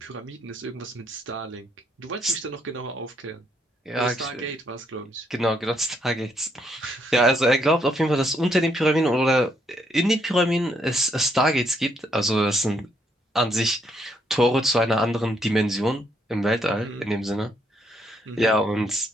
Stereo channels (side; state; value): both; normal; correlation 0.73